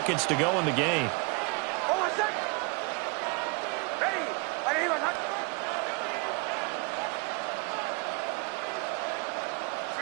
to go in the game.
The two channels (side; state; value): left; quieter; 29.7 dB